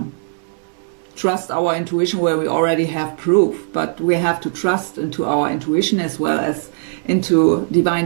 trust our intuition where we already have proof, but we have to trust into our intuition as well as into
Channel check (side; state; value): left; silent; digital silence